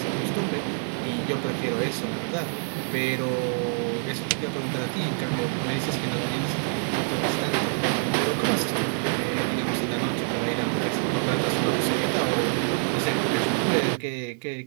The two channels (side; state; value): left; silent; 61 dB below the other